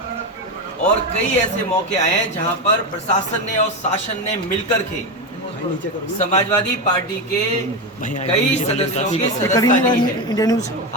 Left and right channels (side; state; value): both; normal; correlation 0.15